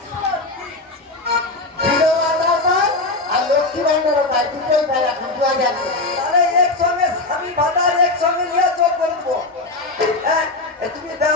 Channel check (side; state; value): right; quieter; 3.1 dB